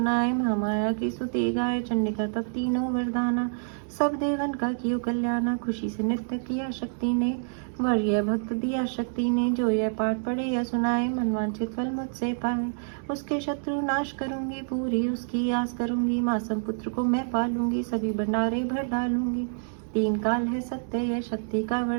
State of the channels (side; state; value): left; silent; digital silence